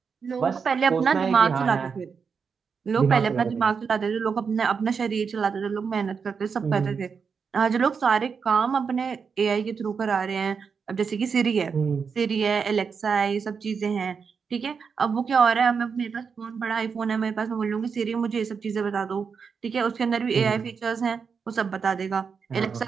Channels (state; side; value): quieter; left; 5.9 dB